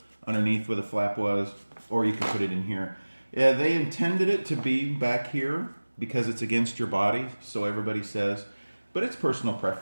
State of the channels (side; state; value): both; inverted; correlation -1.00